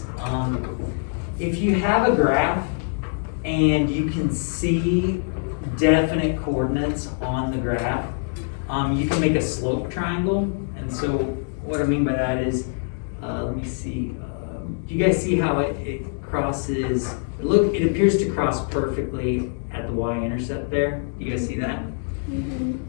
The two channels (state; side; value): silent; right; 63 dB below the other